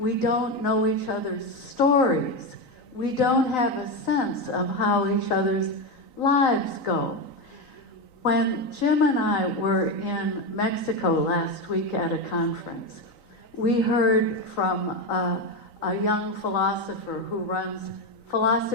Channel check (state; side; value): late; right; 3.9 ms